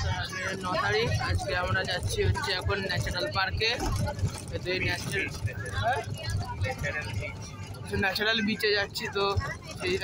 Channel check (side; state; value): both; identical; correlation 1.00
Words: তারিখ। আজকে আমরা যাচ্ছি হচ্ছে এখন ন্যাচারাল পার্কে। ন্যাচারাল বিচে যাচ্ছি। তো সেই